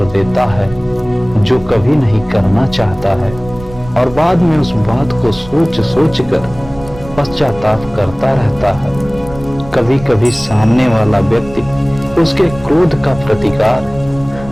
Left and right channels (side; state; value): right; noise; rumble, 16 dB below the sound